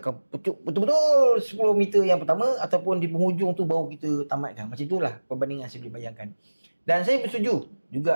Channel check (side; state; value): both; inverted; correlation -1.00